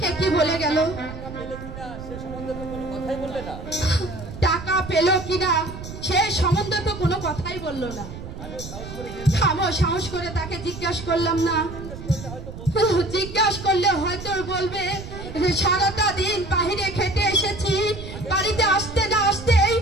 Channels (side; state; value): right; noise; rumble, 11 dB below the sound